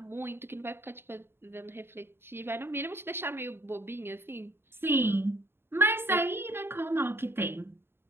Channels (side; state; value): left; late; 0.11 ms